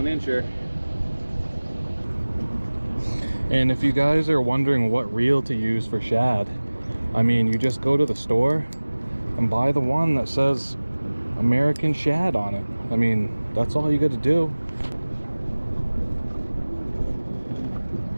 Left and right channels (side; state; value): both; inverted; correlation -1.00